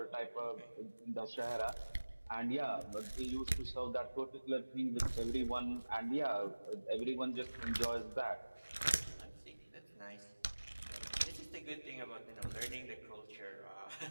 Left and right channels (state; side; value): inverted; both; correlation -1.00